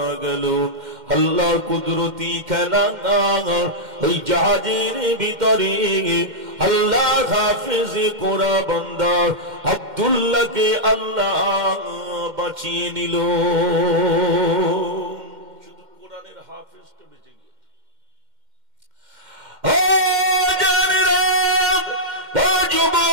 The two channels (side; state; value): left; late; 2.1 ms